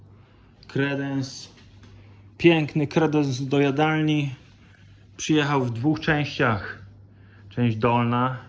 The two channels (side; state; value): both; identical; correlation 1.00